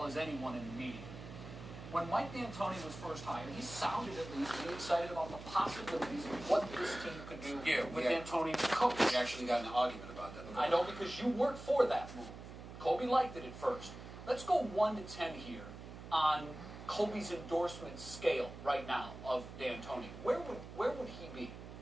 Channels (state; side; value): noise; right; hum, 13 dB below the sound